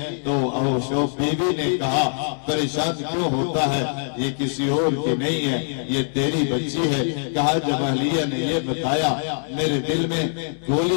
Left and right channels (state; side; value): silent; right; digital silence